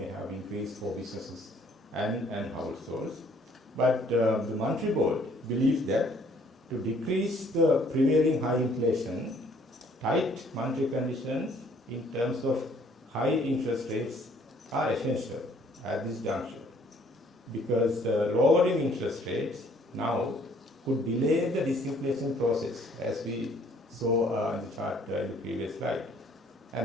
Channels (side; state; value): both; normal; correlation 0.61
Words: have increased for businesses and households. But the Monetary Board believes that to decrease the prevailing high inflation, tight monetary conditions in terms of high interest rates are essential at this juncture, because lowering interest rates now could delay the disinflation process, as we saw in the chart in the previous slide.